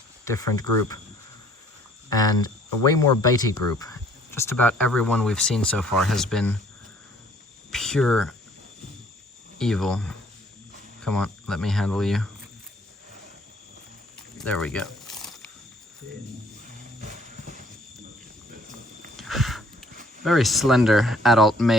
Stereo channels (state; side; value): normal; both; correlation 0.59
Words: different group, and a way more bitey group. Just about every one we've seen so far has been pure evil. Come on, let me handle you. There we go. Very slender adult